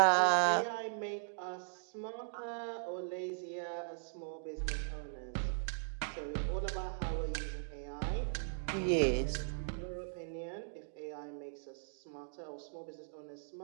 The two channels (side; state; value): left; silent; digital silence